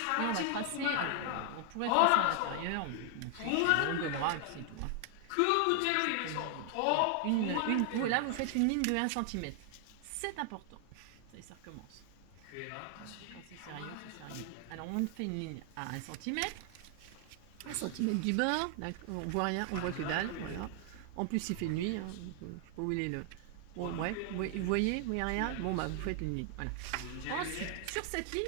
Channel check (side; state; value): both; different; correlation 0.00